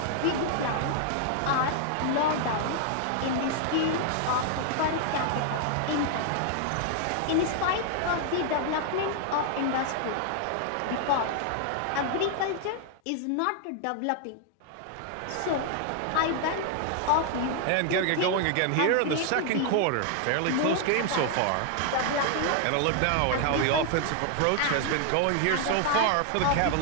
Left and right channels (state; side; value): different; both; correlation 0.00